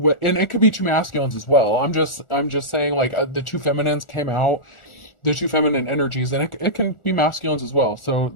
and it could be two masculines as well. I'm just saying, like, the two feminines came out, the two feminine energies, and it can be masculines as well. So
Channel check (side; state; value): right; late; 1.4 ms